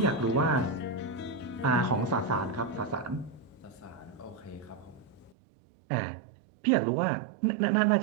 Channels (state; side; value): drops out; left; at 5.4 s